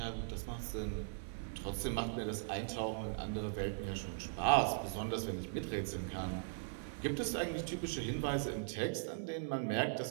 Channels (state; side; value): silent; left; 51 dB below the other